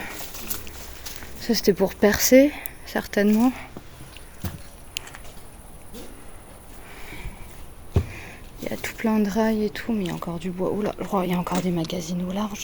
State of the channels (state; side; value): identical; both; correlation 1.00